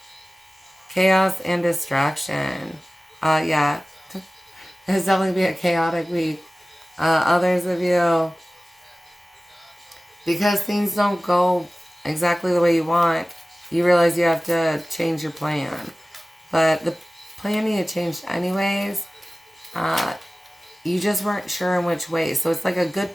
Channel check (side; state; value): both; normal; correlation 0.97